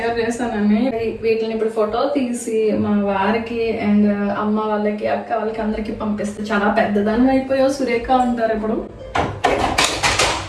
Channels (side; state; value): both; identical; correlation 1.00